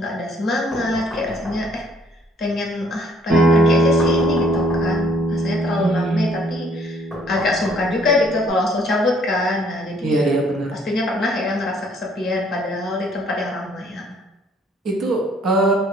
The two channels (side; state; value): both; normal; correlation 0.62